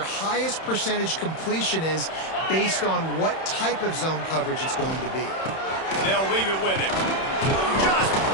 highest percentage completion is based on what type of zone coverage it's going to be. They'll leave it with him. Just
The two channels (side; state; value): right; late; 31 ms